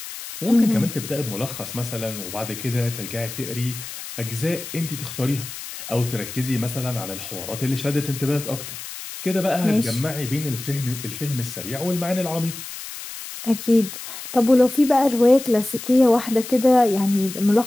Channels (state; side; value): noise; left; hiss, 10 dB below the sound